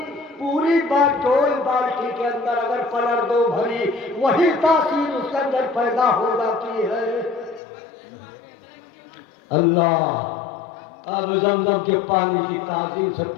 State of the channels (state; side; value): drops out; right; at 7.6 s